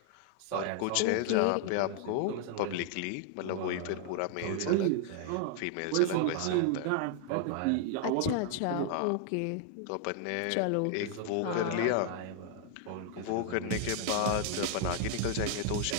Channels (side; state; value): both; different; correlation 0.00